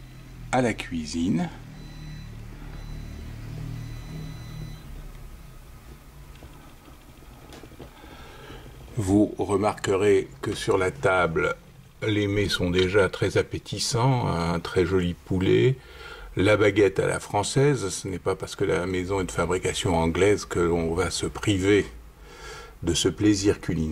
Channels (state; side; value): identical; both; correlation 1.00